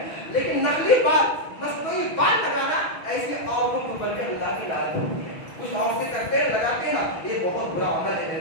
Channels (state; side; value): late; right; 6.2 ms